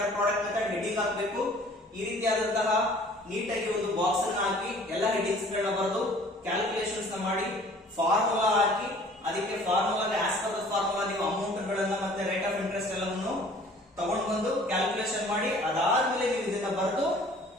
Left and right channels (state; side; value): normal; both; correlation 0.52